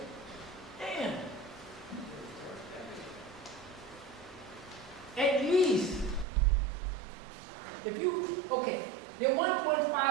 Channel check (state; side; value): drops out; left; at 6.2 s